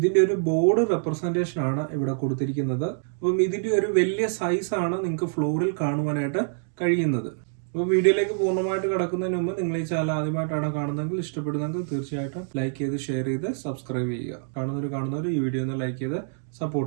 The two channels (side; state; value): left; silent; digital silence